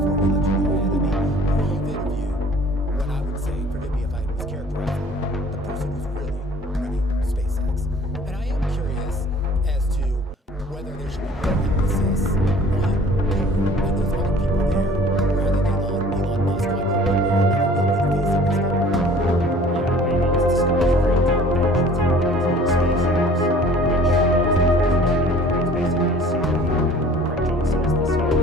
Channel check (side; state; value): both; normal; correlation 0.50